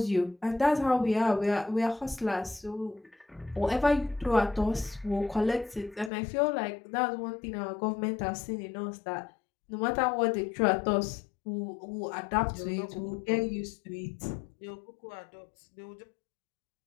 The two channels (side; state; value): right; drops out; at 6.1 s